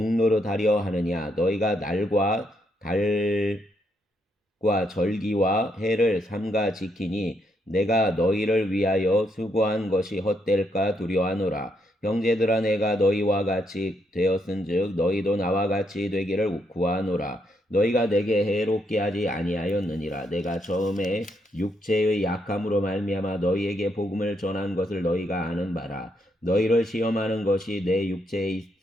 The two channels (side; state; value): both; normal; correlation 0.77